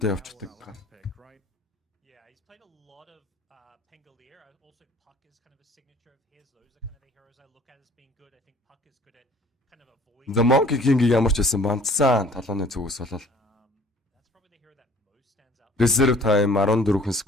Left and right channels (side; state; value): both; normal; correlation 0.53